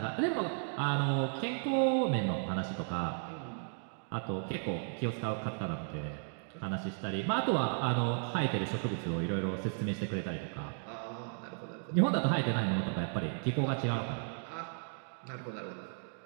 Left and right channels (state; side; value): silent; left; 55 dB below the other